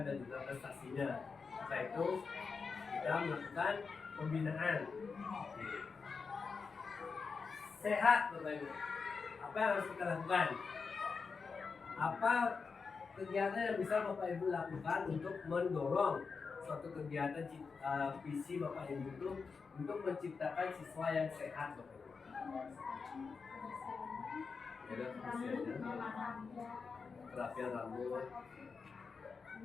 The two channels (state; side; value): quieter; right; 5.1 dB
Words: dan juga prestasinya. Setelah itu kita melakukan pembinaan. Sehat Bapak Ibu. Apa yang harus kita lakukan? Apa kegiatan yang bisa Bapak Ibu lakukan untuk mendorong suatu kegiatan visi Bapak Ibu itu untuk menciptakan siswa yang sehat Bapak Ibu? Ada kerapian rambut,